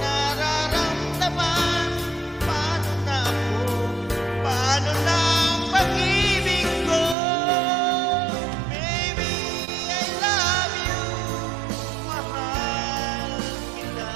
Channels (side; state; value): left; drops out; at 7.2 s